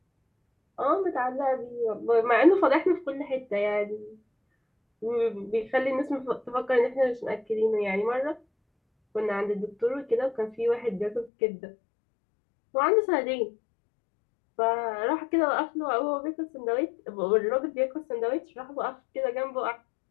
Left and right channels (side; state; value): right; drops out; at 11.3 s